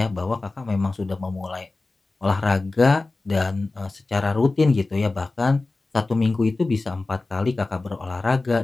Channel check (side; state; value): right; quieter; 3.4 dB